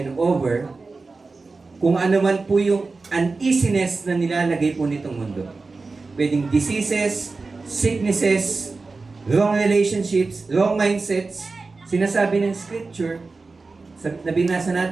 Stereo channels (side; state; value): left; quieter; 3.9 dB